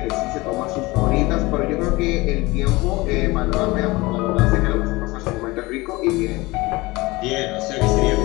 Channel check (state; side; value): quieter; right; 22.0 dB